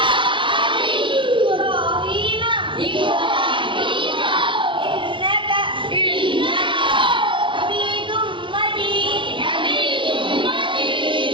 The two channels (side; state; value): left; late; 0.24 ms